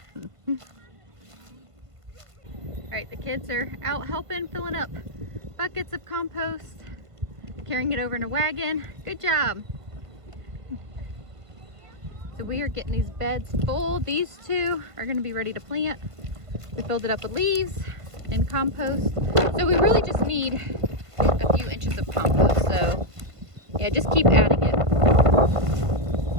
All right, the kids are out helping, filling up buckets of compost, carrying it over in a wagon. Good job. So we are getting these beds full. These two are gonna be ready to plant. We filled it up with leaves and compost. So we really just need a few inches of compost. So yeah, just keep adding it.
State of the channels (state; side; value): late; left; 1.5 ms